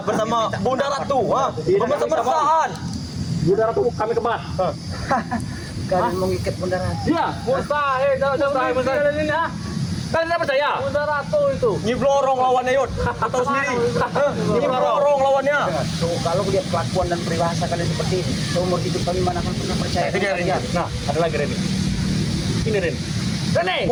Bunda Ratu, bermesra-mesraan. Bunda Ratu kami kebat. Kalian mengikat Bunda Ratu. Iya, mustahil. Mustahil ini ah. Kalian tidak percaya? Bunda Ratu itu. Nyiblorong lawannya Yud. Kau tahu sendiri. Nyiblorong lawannya. Tuh, kalau lihat kelakuan dan peribahasa kalian seperti ini, seumur hidup kami mana akan pernah percaya. Itu dia Reni. kalian. Nah, ada lagi Reni. Ini Reni. Reni.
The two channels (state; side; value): identical; both; correlation 1.00